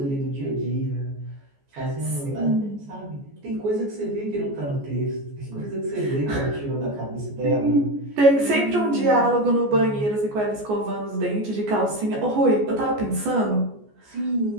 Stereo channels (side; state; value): left; late; 14 ms